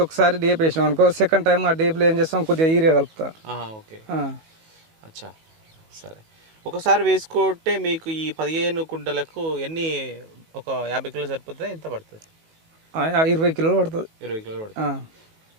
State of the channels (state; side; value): late; left; 19 ms